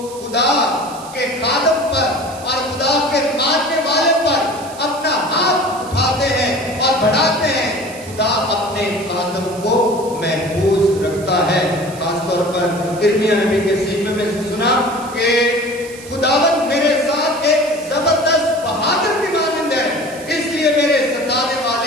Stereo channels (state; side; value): noise; right; hiss, 17 dB below the sound